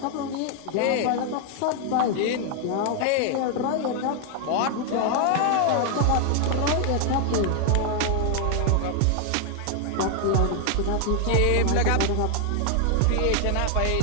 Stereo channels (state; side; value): different; both; correlation 0.00